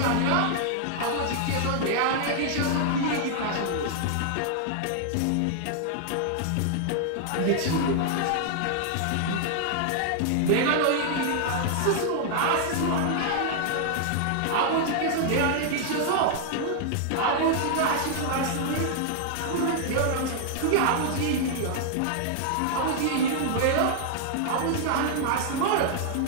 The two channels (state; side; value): different; both; correlation -0.01